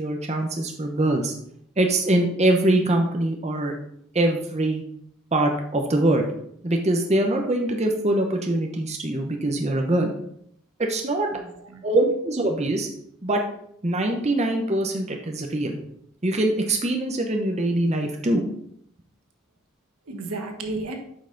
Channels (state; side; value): normal; both; correlation 0.62